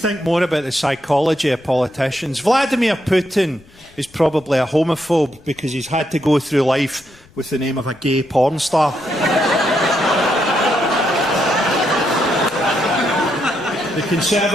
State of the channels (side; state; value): left; noise; rumble, 27 dB below the sound